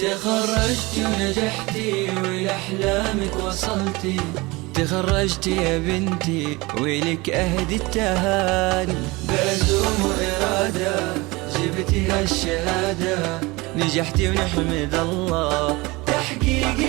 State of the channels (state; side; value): quieter; left; 23.3 dB